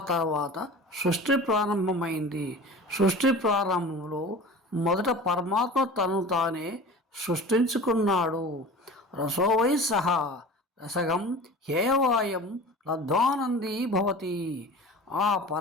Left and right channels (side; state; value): both; normal; correlation 0.38